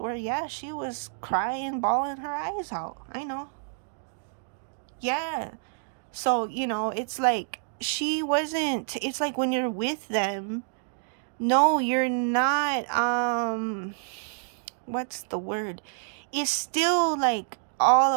yeah, she was crying, bawling her eyes out. I know. Yeah. So, you know, it's like she wasn't, it's like when you're with them, no, you're not, what's the word? It's still like all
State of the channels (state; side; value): silent; left; digital silence